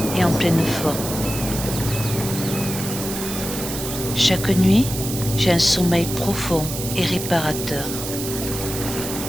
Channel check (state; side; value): noise; right; hiss, 7 dB below the sound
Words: et en pleine forme. Chaque nuit, j'ai un sommeil profond et réparateur.